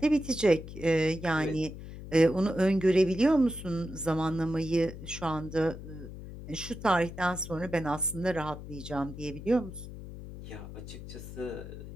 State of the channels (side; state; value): left; noise; hum, 12 dB below the sound